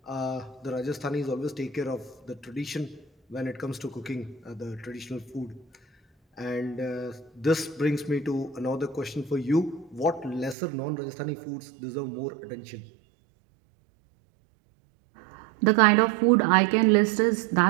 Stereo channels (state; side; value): drops out; left; at 10.6 s